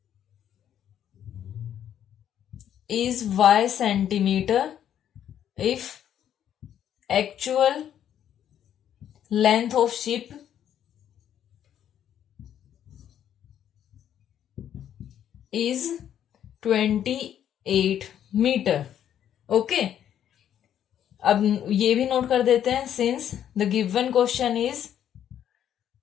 is y centimeter if actual length of ship is 28 metre. Okay, अब ये भी नोट कर देते हैं, since the given question is,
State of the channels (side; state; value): right; quieter; 10.0 dB